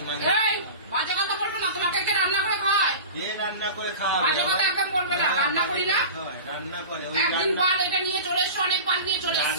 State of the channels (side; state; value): both; inverted; correlation -0.33